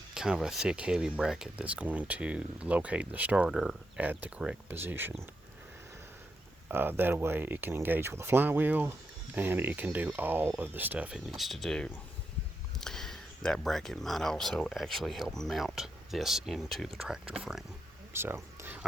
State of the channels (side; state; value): both; normal; correlation 0.83